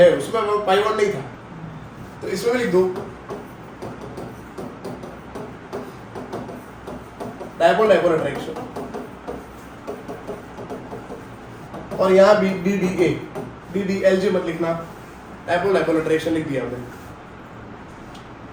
उसमें पाई बॉन्ड नहीं था, तो इसमें भी लिख दो डायपोल डायपोल अट्रैक्शन। और यहाँ भी डी LJ मत लिखना, डायपोल डायपोल अट्रैक्शन लिख दिया हमने।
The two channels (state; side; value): identical; both; correlation 1.00